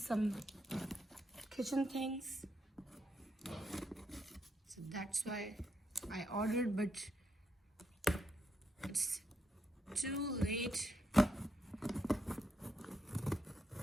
kitchen things, so that's why I ordered, but it's too late.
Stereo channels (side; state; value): both; normal; correlation 0.79